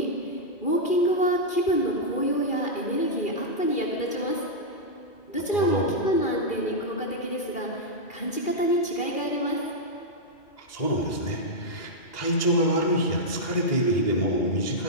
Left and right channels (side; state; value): right; late; 2.4 ms